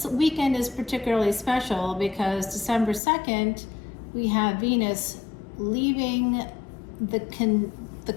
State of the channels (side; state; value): right; drops out; at 3.0 s